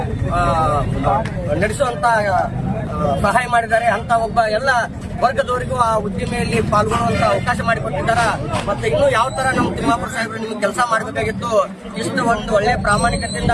ನಡೆಸುವಂತ ಸಹಾಯ ಮಾಡಿದ್ದಾರೆ. ಅಂತ ಒಬ್ಬ ಎಲ್ಲ ವರ್ಗದವರಿಗೂ ಆ ಉದ್ದಿಮೆಯಲ್ಲಿ ಪಾಲ್ಗೊಳ್ಳುವಂತ ಅವಕಾಶ ಮಾಡಿಕೊಟ್ಟಿದ್ದಾರೆ. ಮತ್ತೆ ಇನ್ನೂ ಯಾವ ತರ ನಮ್ಮ ತಿಮ್ಮಾಪುರ ಸಾಹೇಬರು ನಿಮ್ಗೆ ಕೆಲಸ ಮಾಡಬೇಕಾಗಿತ್ತು. ಇಷ್ಟು ಒಂದು ಒಳ್ಳೆ ಪ್ರಾಮಾಣಿಕತೆಯಿಂದ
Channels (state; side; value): identical; both; correlation 1.00